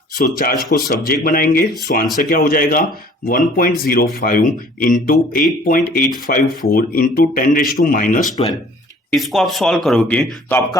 सो चार्ज को सब्जेक्ट बनाएंगे, सो आंसर क्या हो जाएगा 1.05 into 8.854 into 10 raise to minus 12। इसको आप सॉल्व करोगे तो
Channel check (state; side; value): normal; both; correlation 0.53